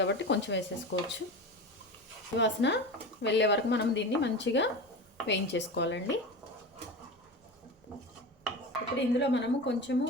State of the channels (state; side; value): normal; both; correlation 0.28